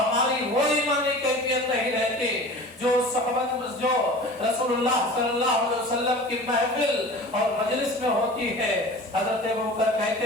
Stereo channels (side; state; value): both; normal; correlation 0.38